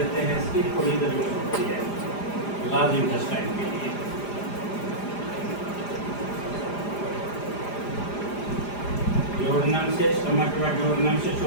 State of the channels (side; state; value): right; late; 4.9 ms